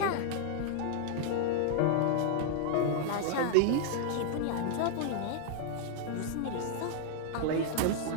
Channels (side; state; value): both; different; correlation -0.01